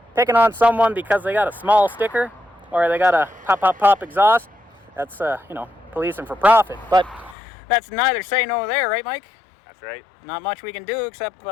picking on someone because they got a small sticker or they got a pop, pop, pop exhaust, that's, you know, policing for profit. But that's neither say nor there, right, Mike? That's right. Not much we can do except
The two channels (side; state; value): right; drops out; at 7.4 s